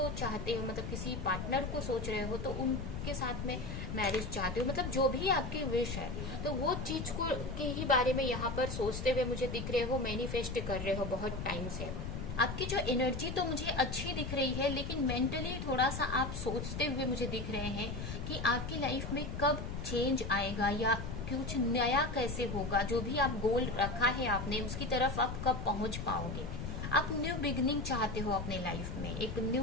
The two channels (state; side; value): noise; left; rumble, 5 dB below the sound